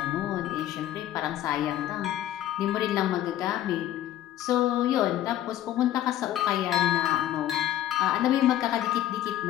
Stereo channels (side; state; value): right; quieter; 12.6 dB